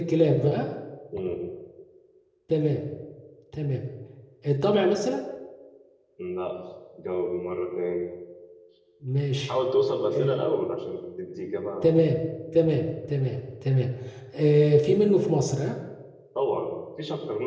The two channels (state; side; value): identical; both; correlation 1.00